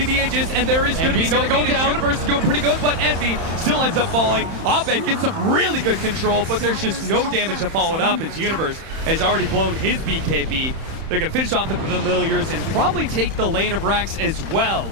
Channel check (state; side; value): late; left; 31 ms